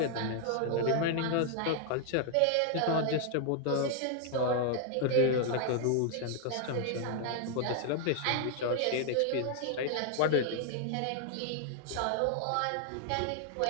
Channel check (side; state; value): both; different; correlation 0.00